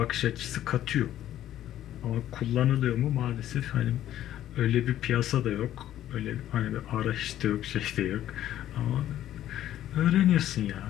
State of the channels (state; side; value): quieter; right; 12.3 dB